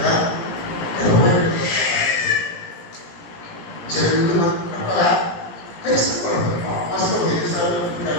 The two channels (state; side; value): late; right; 17 ms